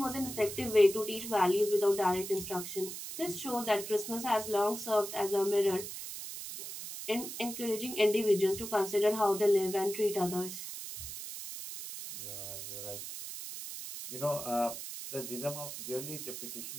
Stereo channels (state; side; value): noise; right; hiss, 8 dB below the sound